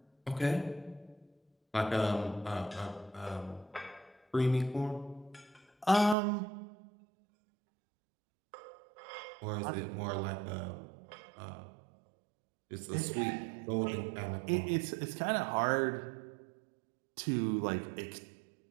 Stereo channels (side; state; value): left; drops out; at 6.2 s